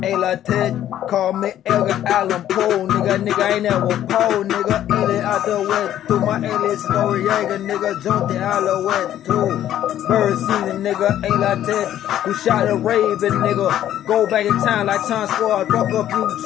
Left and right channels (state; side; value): quieter; right; 11.7 dB